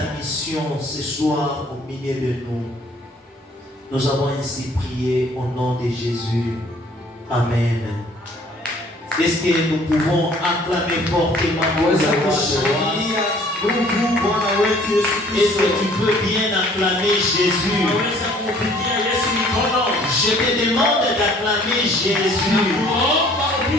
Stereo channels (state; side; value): normal; both; correlation 0.56